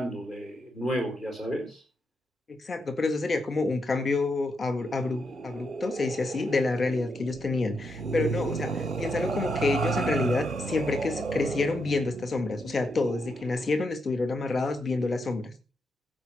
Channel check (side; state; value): both; normal; correlation 0.82